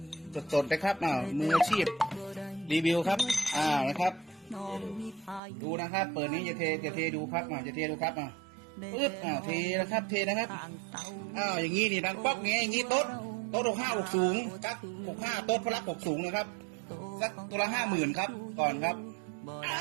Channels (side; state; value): left; drops out; at 5.4 s